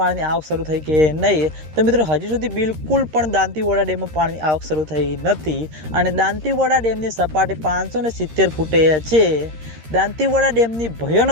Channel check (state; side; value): late; left; 13 ms